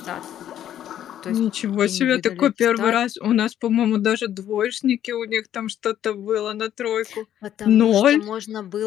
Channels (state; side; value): quieter; right; 11.0 dB